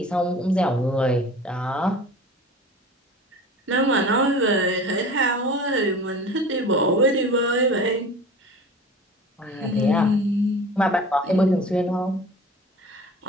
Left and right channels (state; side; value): normal; both; correlation 0.39